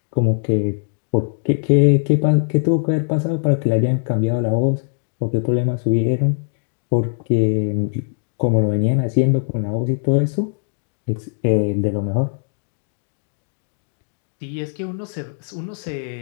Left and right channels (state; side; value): silent; right; digital silence